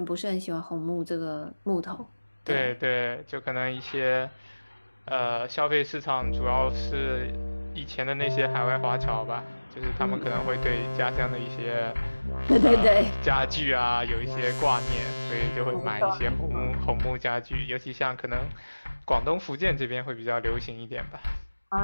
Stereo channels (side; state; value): both; inverted; correlation -1.00